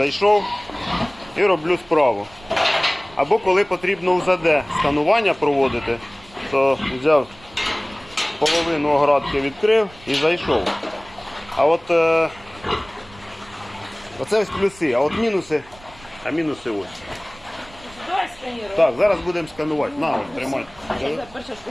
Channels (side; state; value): right; noise; rumble, 23 dB below the sound